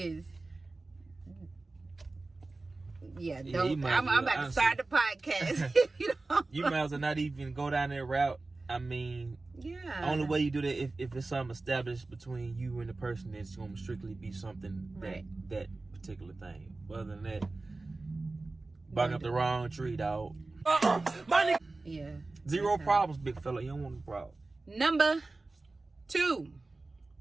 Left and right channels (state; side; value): quieter; left; 3.3 dB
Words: I'm about to start the podcast. You might as well not even go down that route. I mean, only way you do that if it's something established between you and the person, it's going to strictly be something that particular thing. Other than that, barking up the wrong tree, dog. Yeah. Zero problems, big fella. You don't want a problem. Number 2.